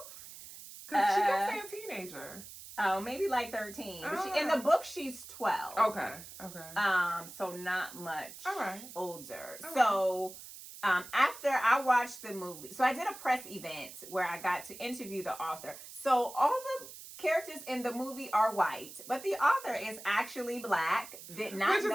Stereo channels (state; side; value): noise; right; hiss, 14 dB below the sound